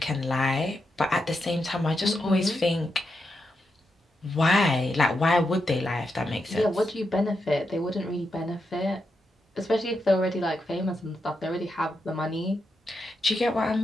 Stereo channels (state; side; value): normal; both; correlation 0.85